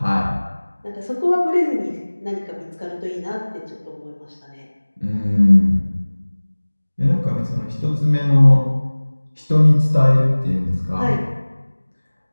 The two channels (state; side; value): inverted; both; correlation -1.00